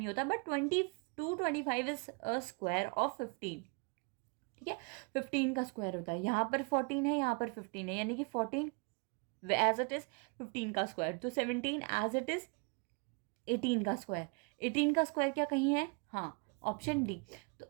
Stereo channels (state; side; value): quieter; left; 33.5 dB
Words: होता, but 25 is a square of 15, ठीक है। 15 का स्क्वायर होता है, यहाँ पर 14 है, यहाँ पर 15 है, यानी कि 14 एज इट इज 15 का स्क्वायर, तो 17 एज इट इज 18 का स्क्वायर। 18 का स्क्वायर क्या कहीं है, हाँ, ऑप्शन डी।